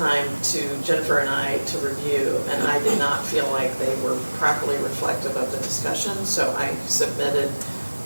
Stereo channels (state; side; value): inverted; both; correlation -1.00